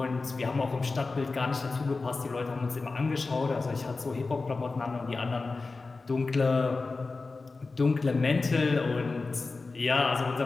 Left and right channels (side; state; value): right; quieter; 3.8 dB